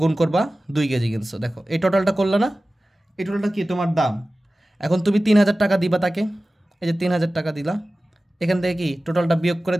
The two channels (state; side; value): normal; both; correlation 0.96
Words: গুণ করবা 2 কেজি কিনছো। দেখো এই টোটালটা করলা না, এই টোটালটা কি তোমার দাম। এখন তুমি 3000 টাকা দিবা তাকে, এই যে 3000 টাকা দিলা, এখান থেকে কি টোটালটা বিয়োগ করে